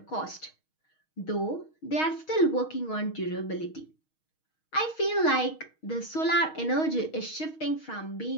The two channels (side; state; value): right; late; 6.4 ms